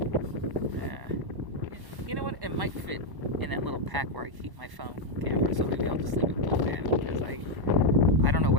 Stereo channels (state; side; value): late; left; 1.1 ms